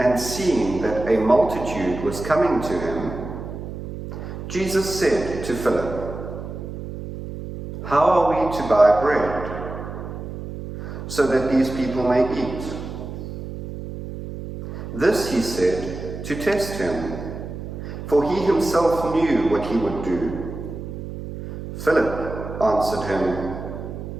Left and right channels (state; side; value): noise; right; hum, 9 dB below the sound